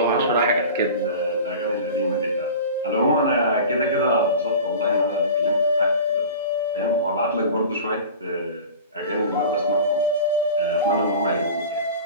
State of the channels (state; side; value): inverted; both; correlation -0.36